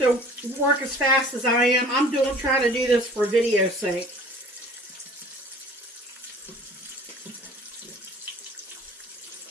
work as fast as I am. I'm trying to do this for video's sake.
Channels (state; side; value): normal; both; correlation 0.47